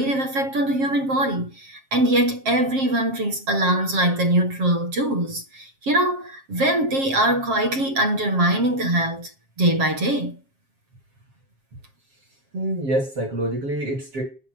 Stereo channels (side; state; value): left; late; 7.4 ms